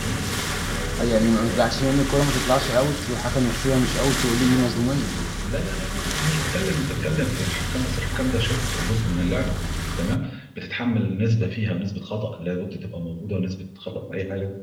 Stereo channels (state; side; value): identical; both; correlation 1.00